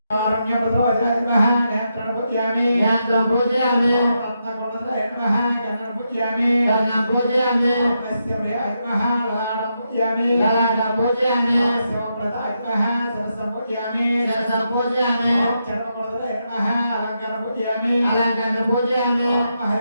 కారుణ్యప్రదోజాయ నేత్రం పూజయామి. నేత్రం పూజయామి. రత్నకుండలాయ నమః గణం పూజయామి. గణం పూజయామి. తస్య ప్రియాయ నమః లలాటం పూజయామి. లలాటం పూజయామి. శివప్రదాయ నమః సరసం పూజయామి. సరసం పూజయామి. చర్మకుండలాయ నమః అలంకారం పూజయామి. అలంకారం పూజయామి.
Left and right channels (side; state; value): both; inverted; correlation -0.83